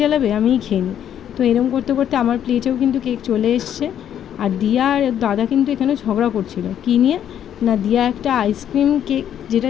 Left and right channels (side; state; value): right; quieter; 9.9 dB